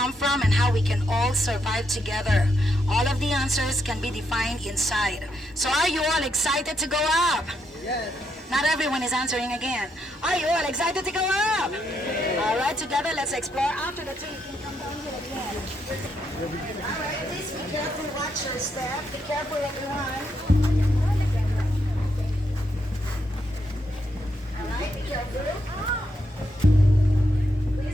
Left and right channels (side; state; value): both; normal; correlation 0.79